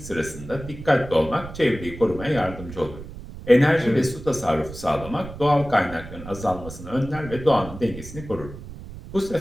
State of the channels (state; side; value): noise; right; rumble, 13 dB below the sound